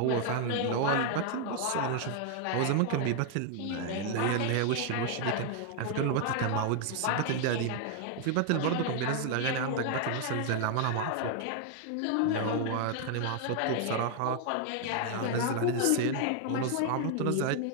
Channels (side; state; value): both; different; correlation 0.00